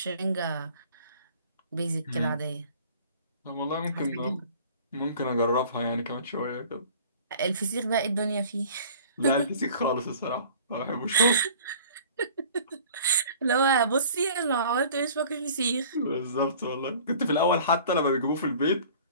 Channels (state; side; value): inverted; both; correlation -0.47